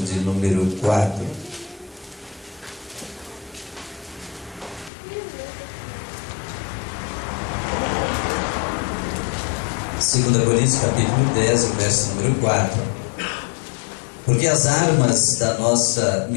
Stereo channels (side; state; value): right; drops out; at 4.9 s